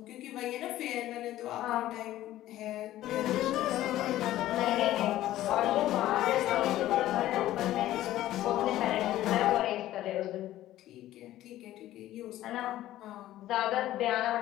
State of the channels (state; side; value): quieter; right; 14.2 dB